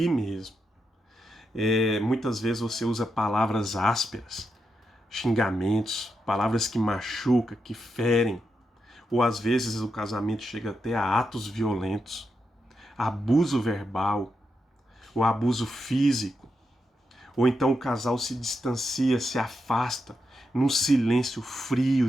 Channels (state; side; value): normal; both; correlation 0.85